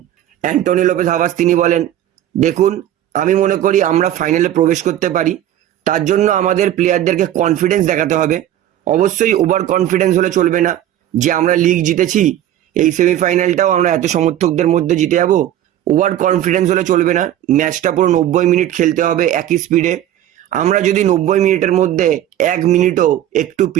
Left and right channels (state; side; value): quieter; left; 12.2 dB